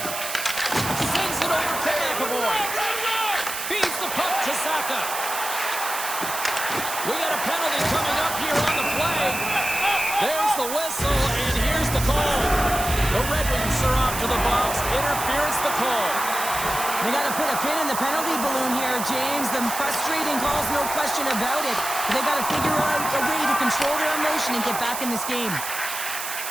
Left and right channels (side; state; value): right; noise; hiss, 5 dB below the sound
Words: Sends it over to McAvoy. Feeds the puck to Saka. We got a penalty coming up here on the play. There's the whistle, and here's the call. The Red Wings are off to the box. Interference the call. They got to put a pin in the penalty balloon here, James. The frustrating calls, no question about it. They got to figure out a way to control their emotion and get back in this game.